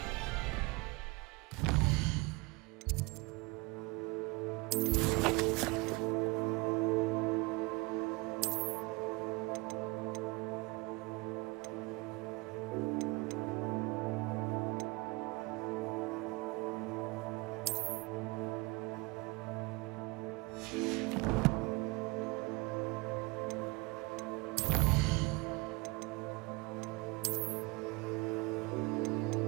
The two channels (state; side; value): quieter; left; 25.4 dB